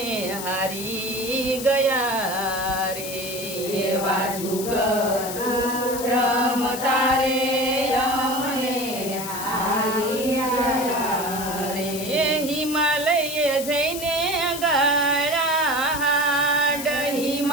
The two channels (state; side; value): noise; left; hiss, 8 dB below the sound